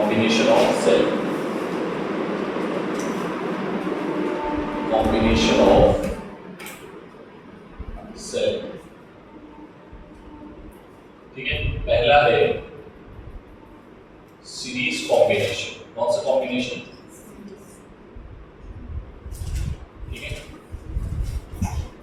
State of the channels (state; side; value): identical; both; correlation 1.00